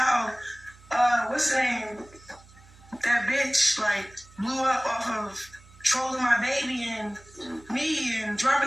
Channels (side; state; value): right; noise; hum, 24 dB below the sound